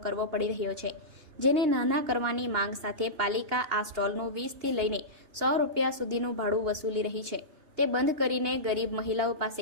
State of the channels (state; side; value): late; left; 2.9 ms